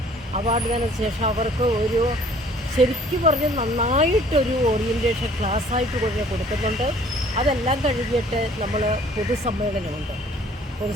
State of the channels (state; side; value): normal; both; correlation 0.55